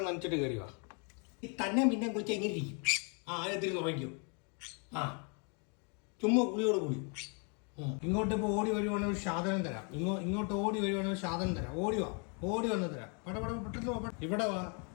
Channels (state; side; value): quieter; right; 36.9 dB